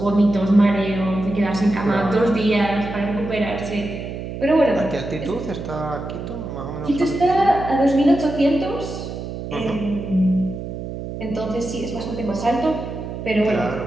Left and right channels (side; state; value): right; noise; hum, 8 dB below the sound